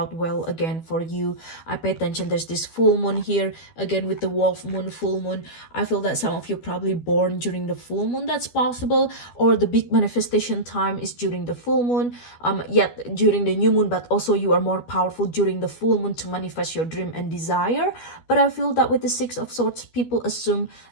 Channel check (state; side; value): late; right; 12 ms